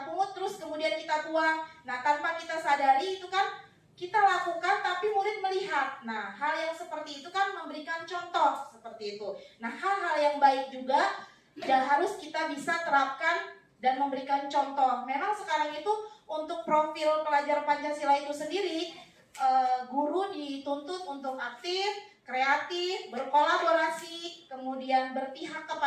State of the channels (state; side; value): identical; both; correlation 1.00